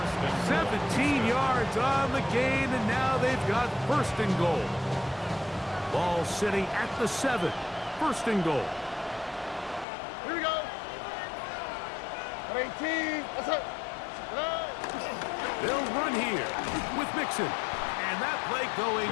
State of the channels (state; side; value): drops out; right; at 9.9 s